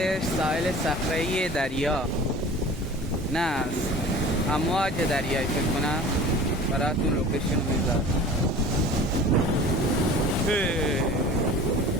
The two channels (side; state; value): both; normal; correlation 0.42